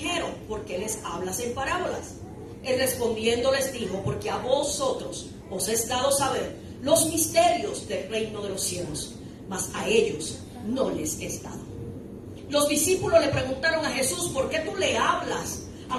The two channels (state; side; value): identical; both; correlation 1.00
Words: ¿por qué les hablas en parábolas? Él respondiendo les dijo, porque a vosotros os es dado saber los misterios del reino de los cielos, mas a ellos no les es dado. Los discípulos le preguntaron a Jesús, ¿por qué tú le hablas a